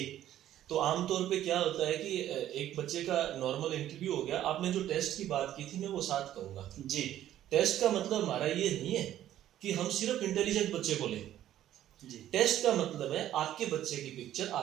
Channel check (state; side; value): quieter; left; 12.3 dB